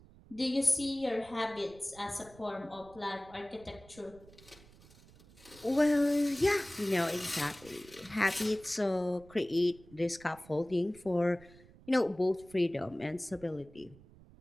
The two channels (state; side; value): noise; right; rumble, 23 dB below the sound